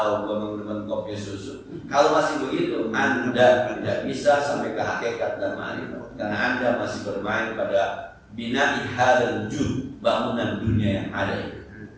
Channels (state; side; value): identical; both; correlation 1.00